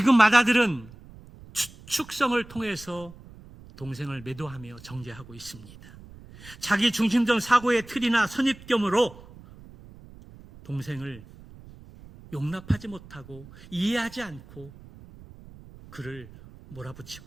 맏아들은 축성을 통해서 동생을 매도하며 정죄하고 있습니다. 자기 중심적 사고의 틀이나 선입견으로 동생을 용납하지 못하고 이해하지 않고 그를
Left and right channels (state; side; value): noise; right; rumble, 20 dB below the sound